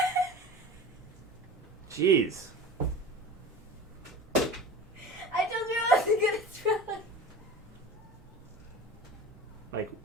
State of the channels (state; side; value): normal; both; correlation 0.36